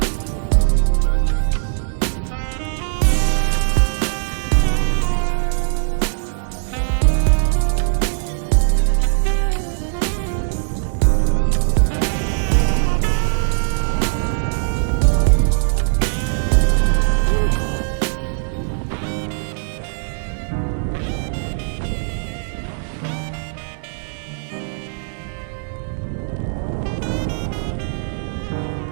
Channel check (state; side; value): silent; left; digital silence